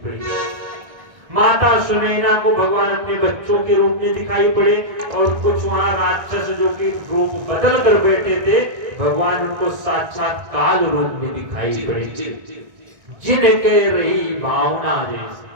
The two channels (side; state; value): left; late; 1.6 ms